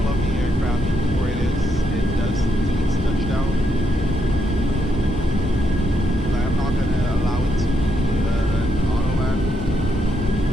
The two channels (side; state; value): both; normal; correlation 0.79